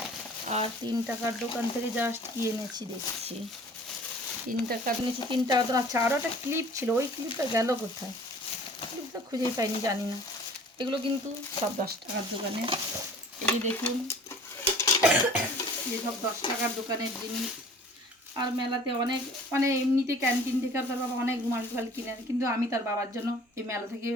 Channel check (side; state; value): both; normal; correlation 0.49